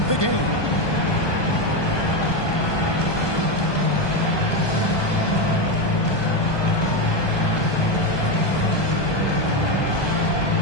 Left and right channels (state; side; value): late; right; 1.2 ms